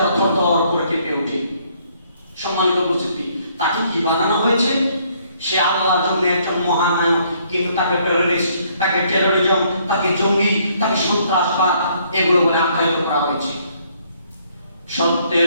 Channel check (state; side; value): inverted; both; correlation -0.66